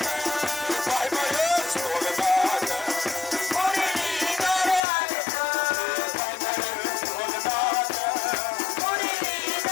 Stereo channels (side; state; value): right; drops out; at 4.8 s